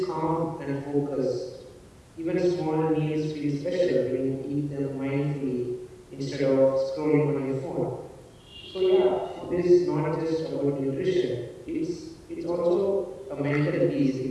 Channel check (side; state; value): both; identical; correlation 1.00